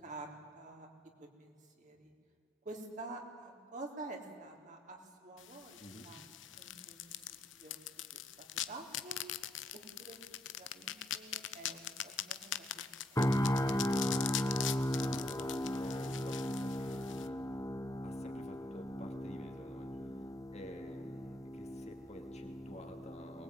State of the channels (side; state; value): both; normal; correlation 0.74